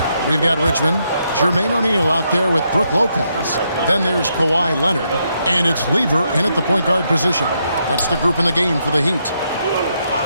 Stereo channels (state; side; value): inverted; both; correlation -0.78